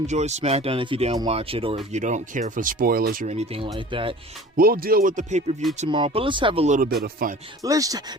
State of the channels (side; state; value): both; normal; correlation 0.42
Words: SmackDown if you didn't watch it, or if you don't care for spoilers or anything like that. We'll deal with the pay-per-view tomorrow, but let's have a little bit of fun. Let's